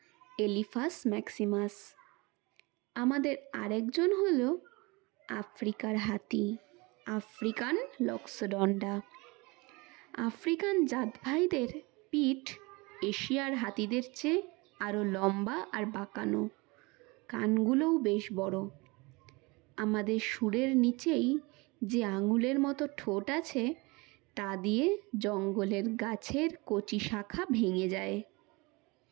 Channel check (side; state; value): left; quieter; 25.7 dB